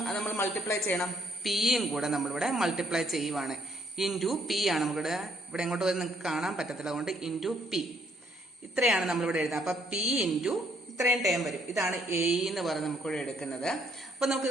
നമ്മൾ മൾട്ടിപ്ലൈ ചെയ്യണം, പിയും കൂടെ നമ്മളിവിടെ മൾട്ടിപ്ലൈ ചെയ്യുവാണ്. ഇൻറ്റു P ആണ് നമുക്കിവിടെ, ഇവിടെ എങ്ങോട്ട് വരും നിങ്ങൾക്ക് കാണാൻ പറ്റത്തില്ല, അതുകൊണ്ട് ഇൻറ്റു P. ഇത്രയാണ് നമ്മളിവിടെ എഴുതുന്നത്. അപ്പം P ഇൻറ്റു ഇത്രയും ടേം വരും. ഇതാണ് AE എന്ന് പറഞ്ഞ് നമുക്കിവിടെ എടുക്കുന്നത്. അപ്പം നമുക്ക്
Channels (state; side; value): normal; both; correlation 0.68